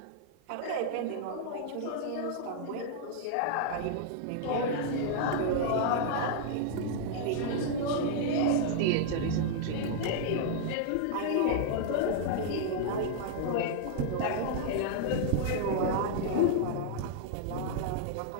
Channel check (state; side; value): different; both; correlation -0.01